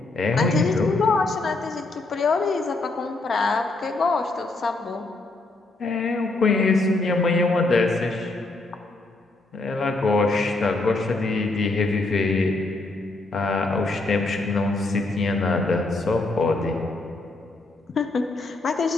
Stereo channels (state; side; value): quieter; right; 3.2 dB